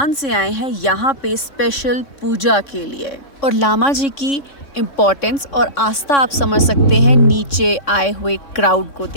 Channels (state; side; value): late; right; 3.6 ms